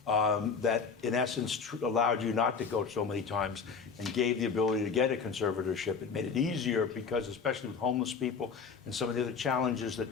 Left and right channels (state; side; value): quieter; right; 5.5 dB